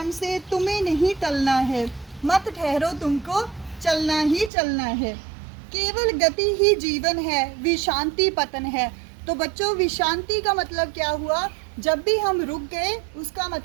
से तुम्हें नहीं टलना है। मत ठहरो, तुमको चलना ही चलना है, केवल गति ही जीवन है, विशांति पतन है। तो बच्चों, विशांति का मतलब क्या हुआ? जब भी हम रुक गए उसका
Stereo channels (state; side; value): drops out; left; at 4.5 s